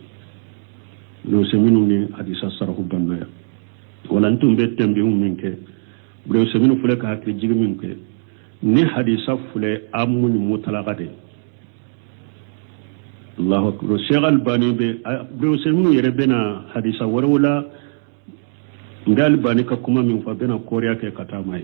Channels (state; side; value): silent; left; digital silence